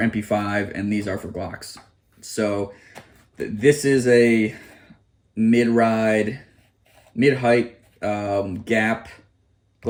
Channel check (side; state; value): both; identical; correlation 1.00